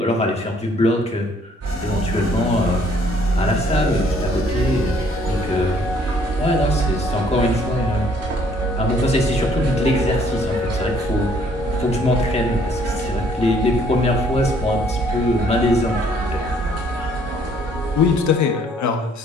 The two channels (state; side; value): normal; both; correlation 0.62